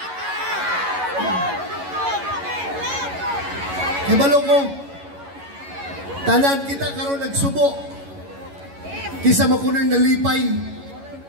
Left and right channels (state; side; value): late; left; 11 ms